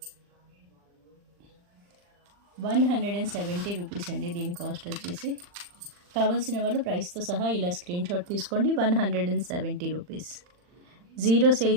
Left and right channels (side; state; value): left; late; 40 ms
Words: 170 రూపీస్ అండి దీని కాస్ట్ వచ్చేసి. కావాల్సిన వాళ్ళు ప్రైస్తో సహా ఇలా స్క్రీన్ షాట్ తీసుకోండి. 170 రూపీస్. 0